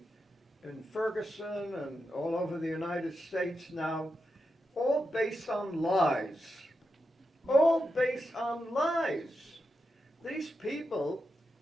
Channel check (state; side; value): normal; both; correlation 0.87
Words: in Ferguson and all over the United States now, all based on lies. All based on lies. These people,